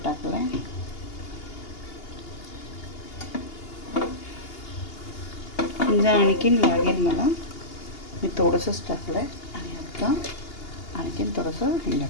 टाकलं आहे. हिंग आणखीन लागेल मला, मी थोडंसंच टाकलं आहे. आणि आता आणखीन थोडंसं हिंग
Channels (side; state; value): right; late; 2.8 ms